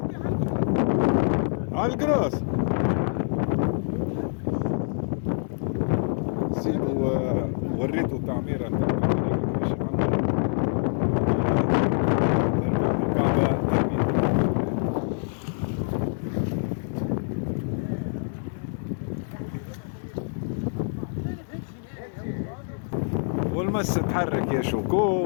على القراص سيبو وريته التعميرة باش يعمر الكعبة والمس تحرك يا شوكو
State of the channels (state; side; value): silent; right; digital silence